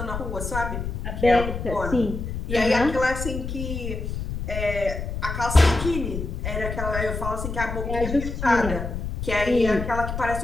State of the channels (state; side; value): noise; left; rumble, 5 dB below the sound